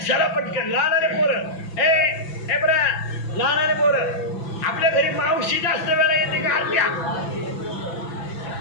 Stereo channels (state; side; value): late; right; 6.0 ms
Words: चला पटकन. लहानारे पोरं ए बरा, लहानारे पोरं आपल्या घरी मावशी जास्त वेळा येते का? अर्ध्या